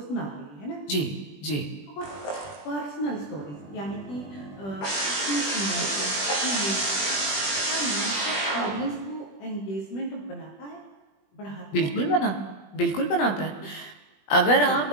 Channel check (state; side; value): late; right; 20 ms